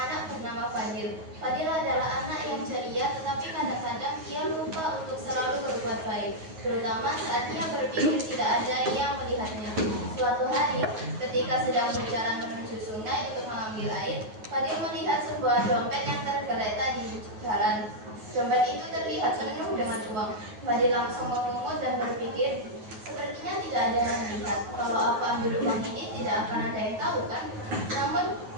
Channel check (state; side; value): late; left; 9.4 ms